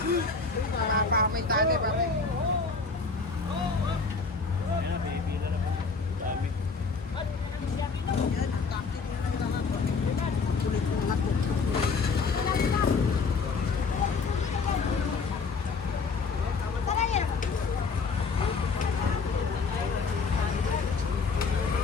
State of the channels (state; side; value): quieter; right; 4.7 dB